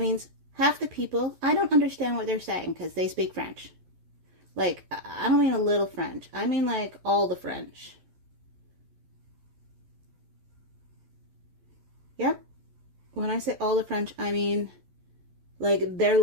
half the people, I don't understand what they're saying because they speak French. Like, I don't mean a little French. I mean like all the French. Yep. When I say all the French, I mean like their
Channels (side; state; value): left; late; 11 ms